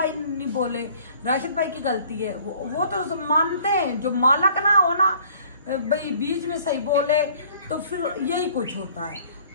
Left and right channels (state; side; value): inverted; both; correlation -0.54